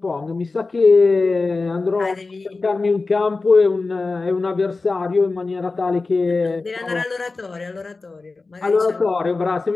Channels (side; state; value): right; quieter; 3.8 dB